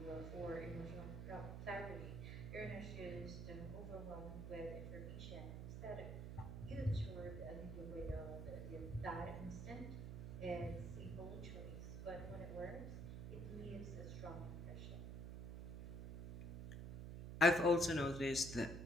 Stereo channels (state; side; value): noise; right; hum, 6 dB below the sound